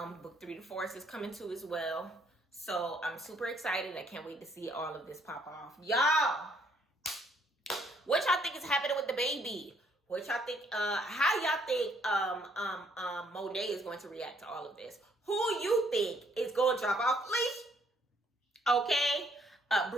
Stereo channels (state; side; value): normal; both; correlation 0.67